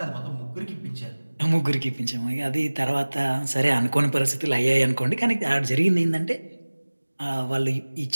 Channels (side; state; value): both; inverted; correlation -1.00